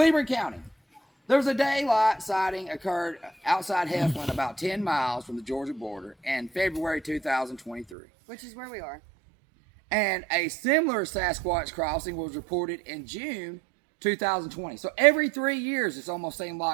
County, there was a daylight sighting occurred outside Heflin, about 10 miles from the Georgia border, in February 2023. Which is where we are. And a similar Sasquatch crossing was reported in June 2020. So every 3 years, it's almost seemed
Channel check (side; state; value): left; drops out; at 8.0 s